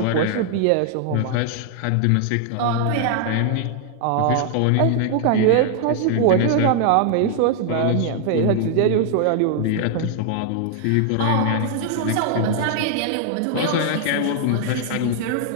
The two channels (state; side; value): different; both; correlation 0.00